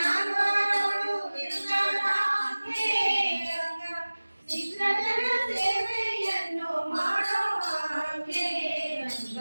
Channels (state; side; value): inverted; both; correlation -1.00